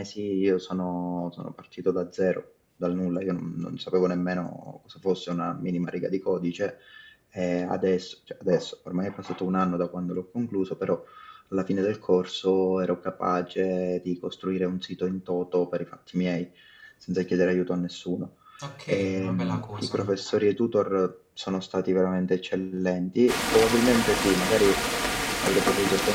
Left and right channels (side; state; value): both; identical; correlation 1.00